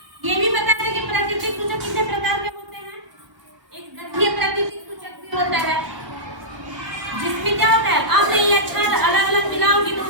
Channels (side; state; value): left; late; 1.2 ms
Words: ये भी बता दें कि प्राकृतिक सूचक कितने प्रकार के होते हैं। एक गंधीय प्राकृतिक सूचक भी होता है, जिसमें क्या होता है? अम्ल या क्षार अलग अलग मिलाओगे तो